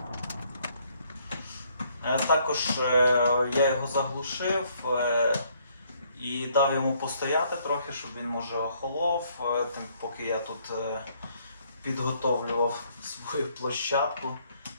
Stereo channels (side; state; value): both; inverted; correlation -0.67